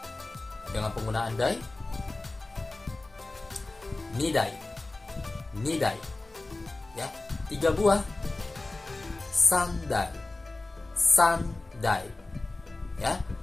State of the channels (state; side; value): quieter; right; 3.1 dB